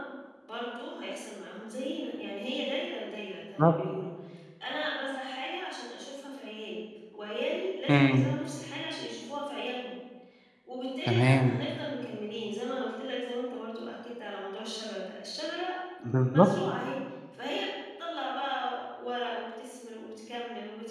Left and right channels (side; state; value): both; identical; correlation 1.00